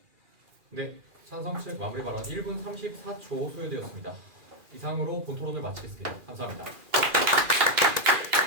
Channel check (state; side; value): late; left; 2.4 ms